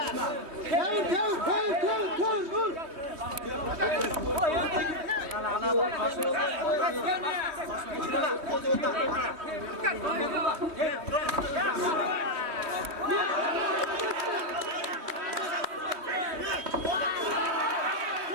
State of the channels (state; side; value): late; left; 3.2 ms